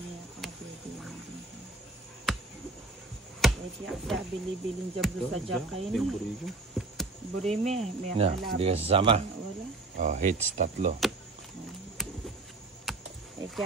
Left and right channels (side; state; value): left; quieter; 3.3 dB